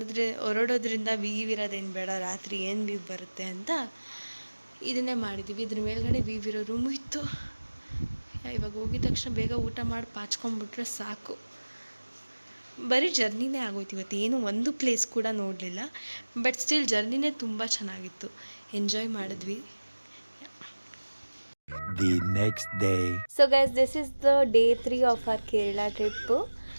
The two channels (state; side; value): inverted; both; correlation -1.00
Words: ಹೊರಡೋದ್ರಿಂದ ವೀವ್ ಇರೋದೇನು ಬೇಡ, ರಾತ್ರಿ ಏನು ವೀವ್ ಬರುತ್ತೆ ಅಂತ ಇದನ್ನೇ ಮಾಡಿದ್ದೀವಿ. ಇದ್ರ ಮೇಲ್ಗಡೆ ವೀವ್ ಇರೋ ರೂಮು ಇತ್ತು. ಇವಾಗ ಹೋಗಿದ ತಕ್ಷಣ ಬೇಗ ಊಟ ಮಾಡಿ ಪಾಚ್ಕೊಂಡ್ಬಿಟ್ರೆ ಸಾಕು. ಬರೀ ಜರ್ನಿನೇ ಆಗೋಯ್ತು ಇವತ್ತು, ಏನು ಒಂದು ಪ್ಲೇಸ್ ಕೂಡ ನೋಡಲಿಲ್ಲ. ಬಟ್ ಸ್ಟಿಲ್ ಜರ್ನಿನೇ ತುಂಬ ಚೆನ್ನಾಗಿತ್ತು, ಎಂಜಾಯ್ ಮಾಡಿದ್ವಿ. The next day. So guys, this is the day 3 of our Kerala trip.